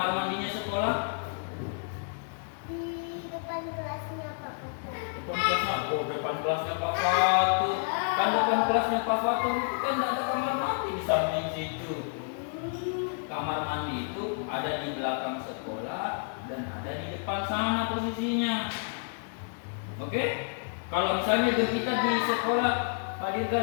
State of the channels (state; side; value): silent; right; 58 dB below the other